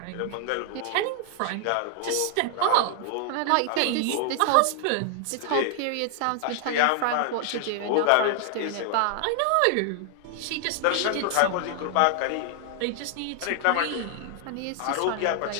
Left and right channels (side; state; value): both; different; correlation 0.00